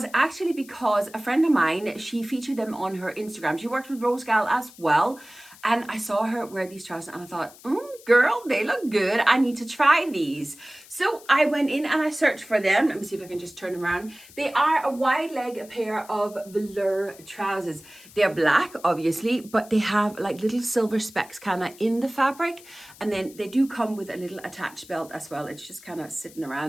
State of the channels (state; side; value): noise; left; hiss, 22 dB below the sound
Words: actually because a friend of mine, she featured them on her Instagram. She worked with ROSEGAL as well, and I saw her wear these trousers and I thought, girl, they look good. I need to try these. So I went in and I searched for them. Let me see if I can just turn them around. They are a wide leg pair of velour trousers. They're black, obviously, but they have like little silver specks kind of in the fabric. And then they do come with a little attached belt as well. It's just kind of sitting